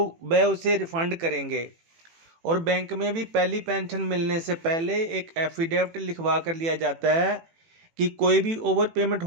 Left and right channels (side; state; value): left; late; 18 ms